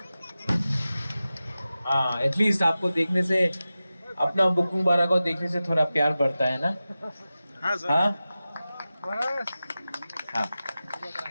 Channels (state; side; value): inverted; both; correlation -0.95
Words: हाँ एटलीस्ट आपको देखने से अपना बुकिंग बारा को देखने से थोड़ा प्यार बढ़ता है ना हाँ सर हाँ